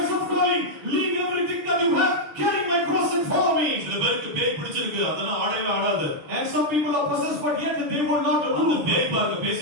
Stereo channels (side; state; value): left; late; 7.0 ms